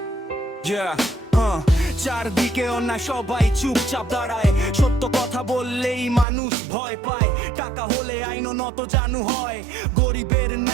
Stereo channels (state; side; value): drops out; left; at 6.2 s